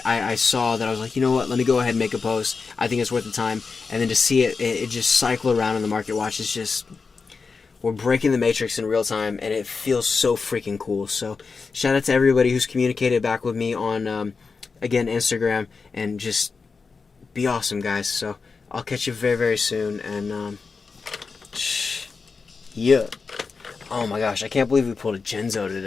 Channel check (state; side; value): quieter; right; 4.8 dB